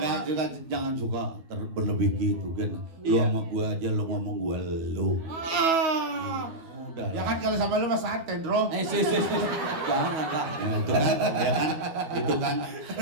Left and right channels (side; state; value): left; late; 12 ms